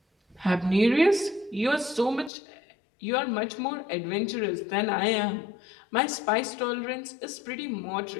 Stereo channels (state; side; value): drops out; right; at 2.3 s